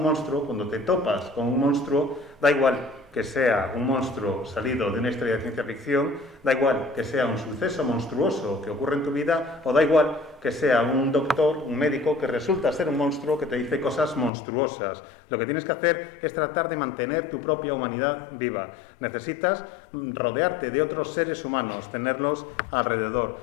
monstruo, cuando te topas con un monstruo, da igual que sea un monstruo salido de una historia de ciencia ficción, da igual que sea un suceso monstruoso que ocurre en tu vida, o da igual que sea un doctor, un médico, que resulta ser un monstruo que te dice cosas monstruosas. Lo que tienes que hacer es tratar de mantener tu propia humanidad viva. Necesitas rodearte de otros seres humanos, tenerlos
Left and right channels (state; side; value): drops out; right; at 14.3 s